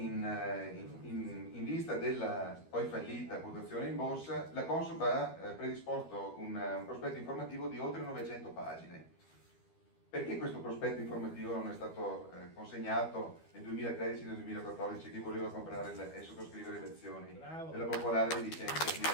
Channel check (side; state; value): right; late; 12 ms